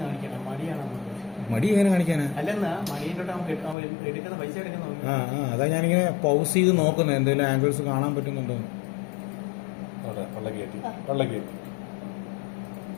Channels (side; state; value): right; drops out; at 3.8 s